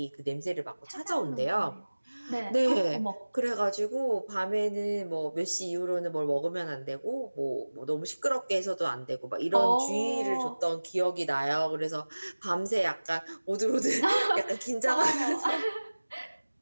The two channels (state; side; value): inverted; both; correlation -1.00